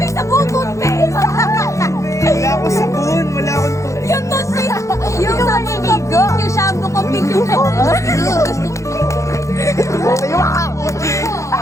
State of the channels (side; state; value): right; late; 0.15 ms